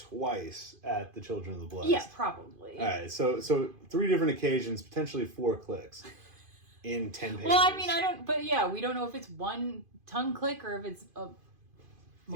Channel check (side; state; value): left; late; 2.5 ms